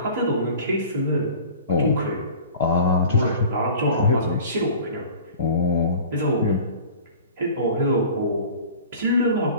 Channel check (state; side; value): inverted; both; correlation -0.42